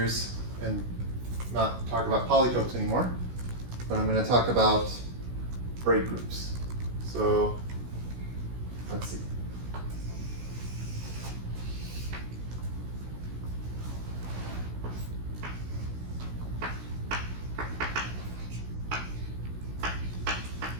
and not talk about polytopes anymore, but I'm going to talk about braid groups. So let's see.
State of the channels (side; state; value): left; late; 16 ms